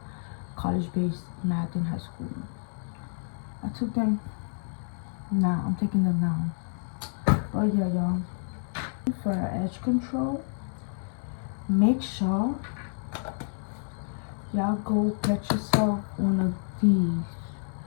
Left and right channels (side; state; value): right; silent; 59 dB below the other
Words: college-based math in high school. I took them now. I'm taking them now. But yeah, y'all. For edge control, make sure y'all go get yourself one of these